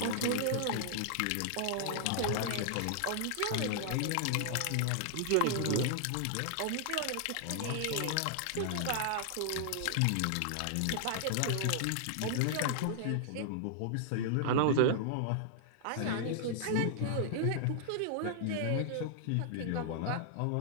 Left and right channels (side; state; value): both; different; correlation -0.01